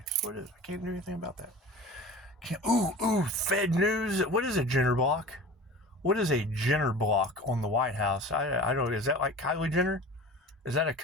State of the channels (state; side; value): normal; both; correlation 0.38